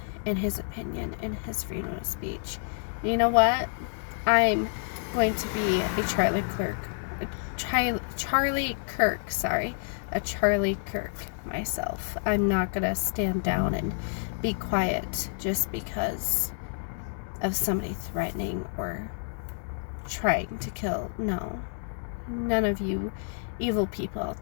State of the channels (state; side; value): silent; right; digital silence